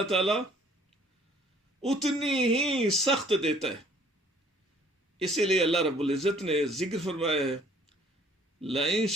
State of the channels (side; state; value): both; normal; correlation 0.57